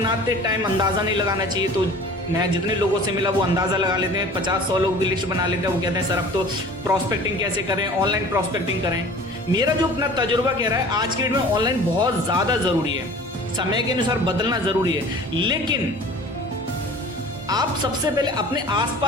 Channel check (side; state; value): both; normal; correlation 0.44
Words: टाइम अंदाज़ा नहीं लगाना चाहिए। तो मैं जितने लोगों से मिला वो अंदाज़ा लगा लेते हैं, 50-100 लोग भी लिस्ट बना लेते हैं। वो कहते हैं सर अब तो प्रॉस्पेक्टिंग कैसे करें, ऑनलाइन प्रॉस्पेक्टिंग करें। मेरा जो अपना तजुर्बा कह रहा है, आज के डेट में ऑनलाइन बहुत ज़्यादा ज़रूरी है, समय के अनुसार बदलना ज़रूरी है। लेकिन आप सबसे पहले अपने